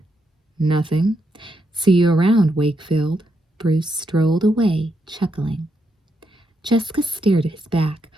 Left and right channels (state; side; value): normal; both; correlation 0.81